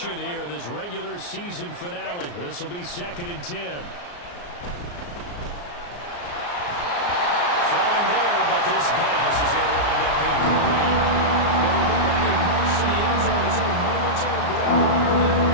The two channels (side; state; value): right; late; 34 ms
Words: here in this regular season finale. This will be 2nd and 10. Throwing there, but this pass is going to wind up incomplete. Well, it looked like a march to the end zone is in a momentary break prior to the